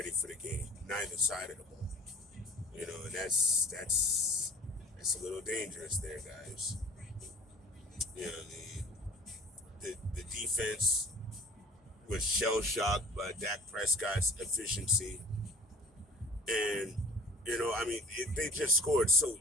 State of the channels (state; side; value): normal; both; correlation 0.47